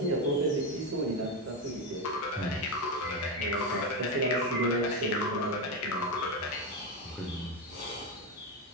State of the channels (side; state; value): both; normal; correlation 0.11